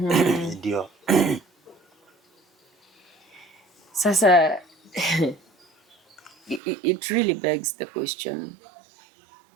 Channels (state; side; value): drops out; left; at 6.6 s